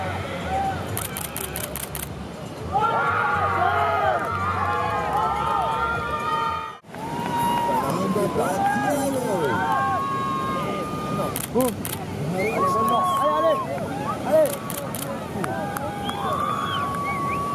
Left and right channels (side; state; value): both; identical; correlation 1.00